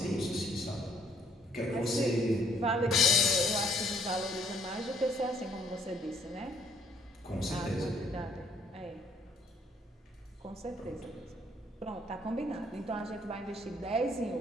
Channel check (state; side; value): normal; both; correlation 0.66